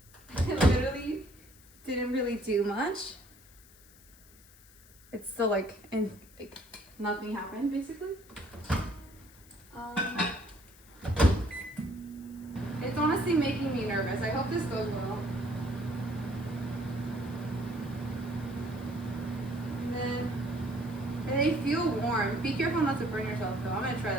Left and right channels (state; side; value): noise; left; hiss, 24 dB below the sound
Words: It literally didn't really do much. It's still like nothing happened basically. It's honestly making me nervous. I hope this goes well. And they feel warm. Be careful not to burn yourself though. I'm gonna try